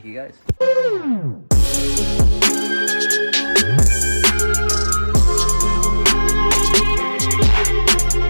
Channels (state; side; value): inverted; both; correlation -1.00